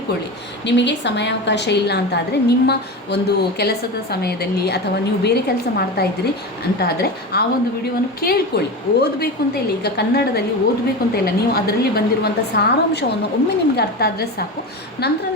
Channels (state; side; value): normal; both; correlation 0.24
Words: ನಿಮಗೆ ಸಮಯಾವಕಾಶ ಇಲ್ಲ ಅಂತಾದರೆ ನಿಮ್ಮ ಒಂದು ಕೆಲಸದ ಸಮಯದಲ್ಲಿ ಅಥವಾ ನೀವು ಬೇರೆ ಕೆಲಸ ಮಾಡ್ತಾ ಇದ್ದೀರಿ ಅಂತಾದರೆ ಆ ಒಂದು ವಿಡಿಯೋವನ್ನು ಕೇಳಿಕೊಳ್ಳಿ. ಓದಬೇಕು ಅಂತ ಇಲ್ಲ, ಈಗ ಕನ್ನಡದಲ್ಲಿ ಓದಬೇಕು ಅಂತ ಇಲ್ಲ, ನೀವು ಅದರಲ್ಲಿ ಬಂದಿರುವಂಥ ಸಾರಾಂಶವನ್ನು ಒಮ್ಮೆ ನಿಮಗೆ ಅರ್ಥ ಆದರೆ ಸಾಕು, ನಂತರ